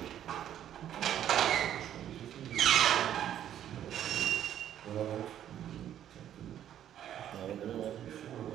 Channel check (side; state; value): left; quieter; 10.7 dB